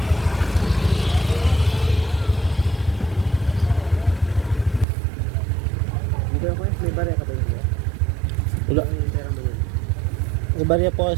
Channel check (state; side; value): drops out; left; at 4.9 s